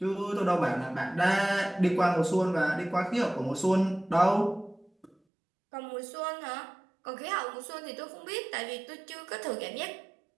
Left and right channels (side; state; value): left; drops out; at 5.1 s